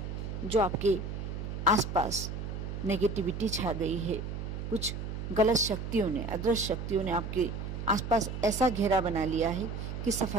जो आपके आसपास नेगेटिविटी छा गई है, कुछ गलत शक्तियों ने, अदृश्य शक्तियों ने आपके आसपास ऐसा घेरा बना लिया है कि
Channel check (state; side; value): noise; right; hum, 6 dB below the sound